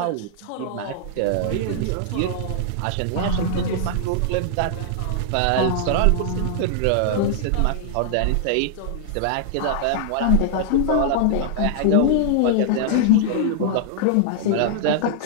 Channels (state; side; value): different; both; correlation -0.01